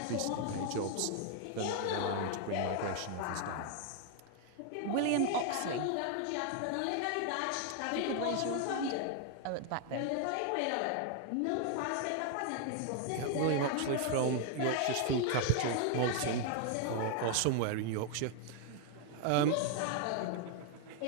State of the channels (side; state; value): both; different; correlation 0.00